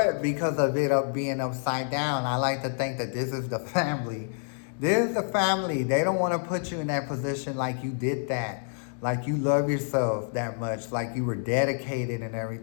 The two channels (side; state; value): right; silent; digital silence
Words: because of it being upside down, I like to think that this is the family. This is the family. They don't want to put you in that position like you did that. Like you love yourself that much. Like you were dedicated and